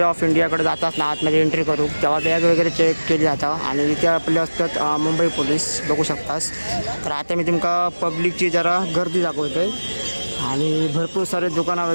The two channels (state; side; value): inverted; both; correlation -1.00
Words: ऑफ इंडियाकडे जातात ना आतमध्ये एंट्री करू तेव्हा बॅग वगैरे चेक केली जातं आणि इथे आपले असतात मुंबई पोलीस बघू शकतास. तर आता मी तुमका पब्लिकची जरा गर्दी दाखवते आणि भरपूर सारे दुकानं